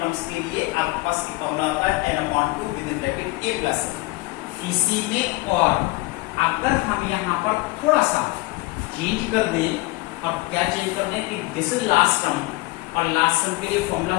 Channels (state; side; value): quieter; right; 21.4 dB